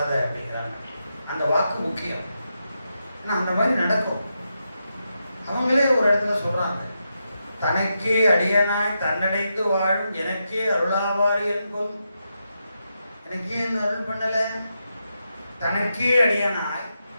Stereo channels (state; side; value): inverted; both; correlation -0.86